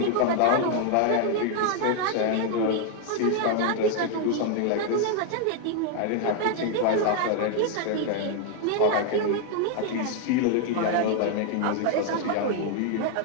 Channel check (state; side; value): different; both; correlation 0.00